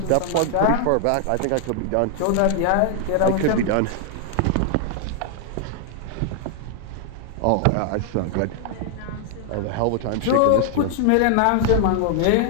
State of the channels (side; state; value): both; different; correlation 0.00